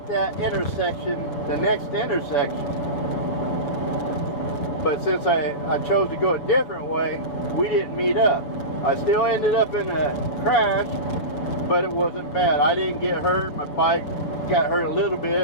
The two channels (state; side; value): late; right; 6.7 ms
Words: that intersection, the next intersection. But since I chose to go a different way, we didn't meet up. I still ended up in a crash, but it wasn't bad. I didn't get hurt. My bike got hurt a little